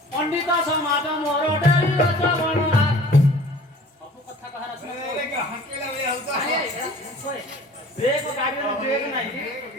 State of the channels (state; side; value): normal; both; correlation 0.47